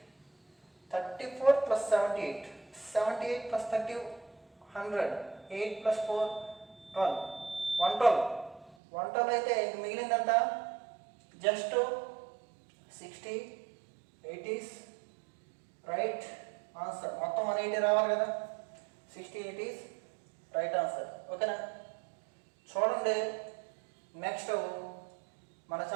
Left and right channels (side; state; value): left; drops out; at 8.8 s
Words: 34 plus 78, 78 plus 30, 100, 8 plus 4, 12, 112. 112 అయితే మిగిలిందంతా జస్ట్ 60, 80s. Right answer. మొత్తం 180 రావాలి కదా, 60, 80s రైట్ ఆన్సర్. ఓకేనా? చూడండి, నెక్స్ట్ మన